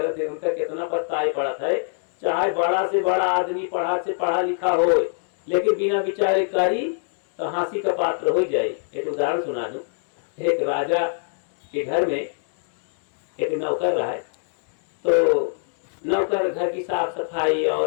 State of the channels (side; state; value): right; silent; digital silence